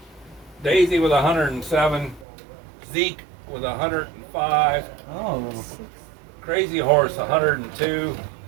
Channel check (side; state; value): left; drops out; at 2.2 s